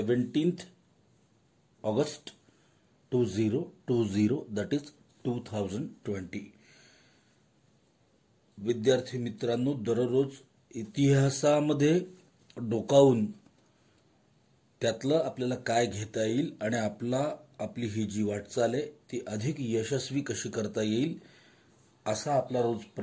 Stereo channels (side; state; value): both; identical; correlation 1.00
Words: August 2020 that is 2020। विद्यार्थी मित्रांनो दररोज इतिहासामध्ये डोकावून त्यातलं आपल्याला काय घेता येईल आणि आपली ही जी वाटचाल आहे ती अधिक यशस्वी कशी करता येईल असा आपला रोज